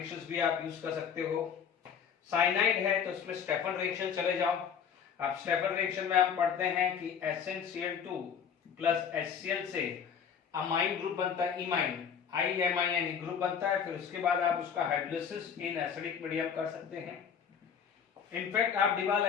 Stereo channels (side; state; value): right; quieter; 7.3 dB